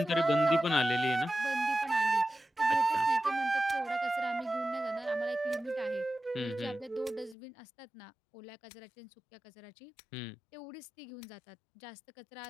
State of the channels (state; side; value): drops out; right; at 7.4 s